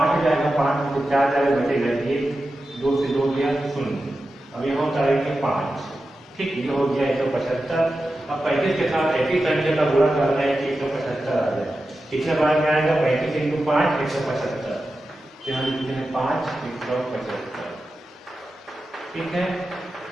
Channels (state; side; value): normal; both; correlation 0.92